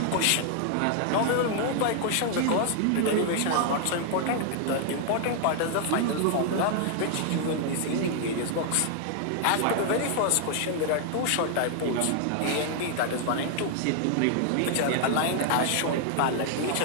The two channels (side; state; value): both; different; correlation 0.00